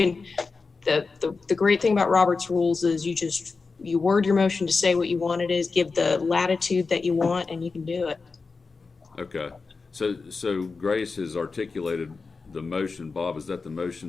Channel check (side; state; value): right; quieter; 4.4 dB